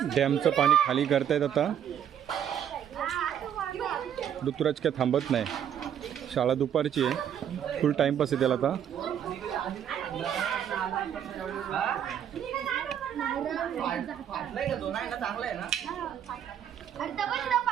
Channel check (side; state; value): left; quieter; 9.3 dB